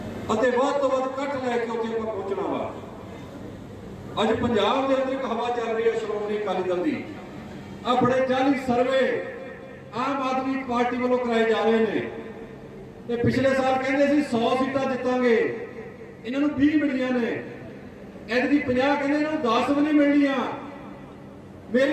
अते वध तो वध इकट्ठ लैके उत्थे आपां पहुंचना वा। अज पंजाब के अंदर एक हवा चल रही है श्रोमणी अकाली दल की, अपने 40 सर्वे आम आदमी पार्टी वालों कराए जा रहे हैं। पिछले साल कहते 100 सीटां जितांगे, इन्होंने 20 मिलियां ने, ऐतकी 50 कहते इन्होंने 10 भी नहीं मिलनियां।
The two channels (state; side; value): identical; both; correlation 1.00